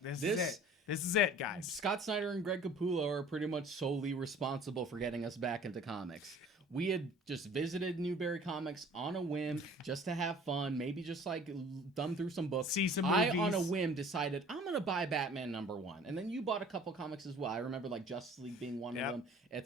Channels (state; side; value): normal; both; correlation 0.49